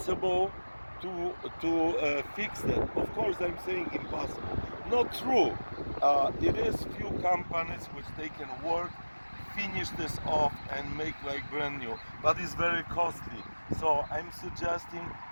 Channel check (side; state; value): both; inverted; correlation -1.00